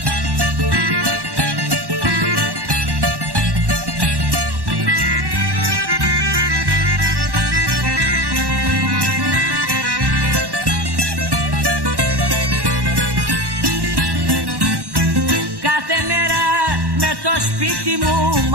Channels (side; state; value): left; late; 1.1 ms